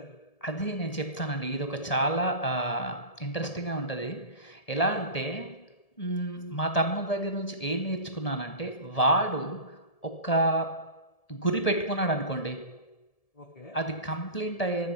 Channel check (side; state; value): right; late; 1.7 ms